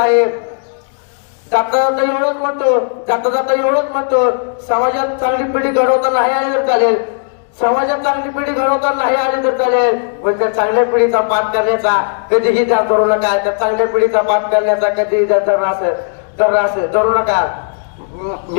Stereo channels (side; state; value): right; silent; digital silence